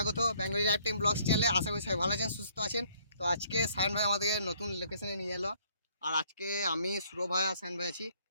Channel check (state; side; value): inverted; both; correlation -0.63